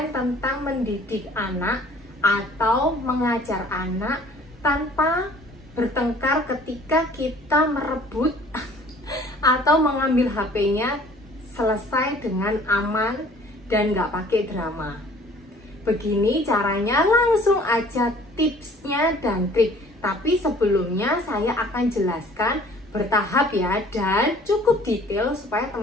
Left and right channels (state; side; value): normal; both; correlation 0.53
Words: tentang mendidik anak atau mengajar anak tanpa bertengkar ketika kita merebut atau mengambil HP-nya, selesai dengan aman dan nggak pakai drama. Begini caranya, langsung aja tipsnya dan trik. Tapi sebelumnya saya akan jelaskan bertahap ya, dan cukup detail supaya